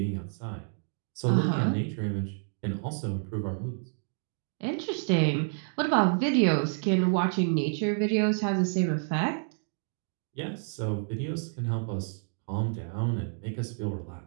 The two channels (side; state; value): left; silent; digital silence